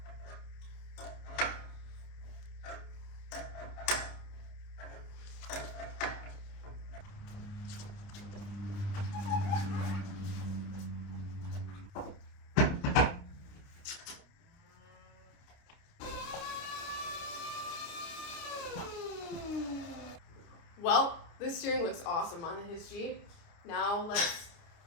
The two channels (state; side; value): late; right; 29 ms